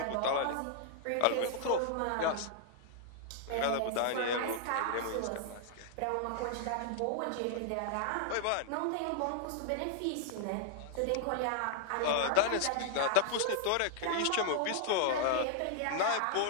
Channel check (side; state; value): both; different; correlation -0.01